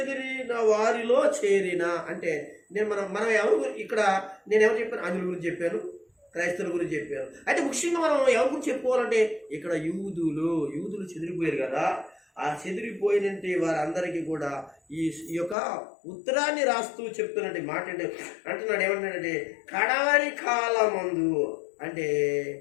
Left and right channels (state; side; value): drops out; right; at 15.6 s